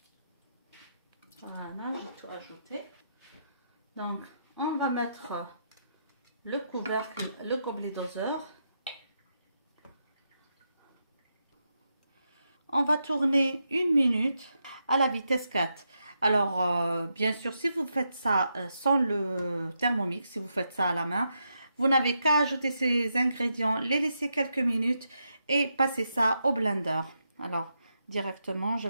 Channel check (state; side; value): inverted; both; correlation -0.83